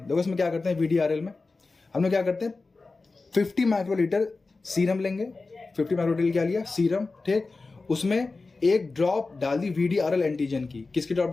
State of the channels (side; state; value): right; quieter; 3.8 dB